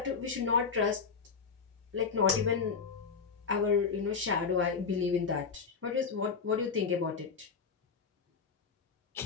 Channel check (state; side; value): quieter; right; 5.5 dB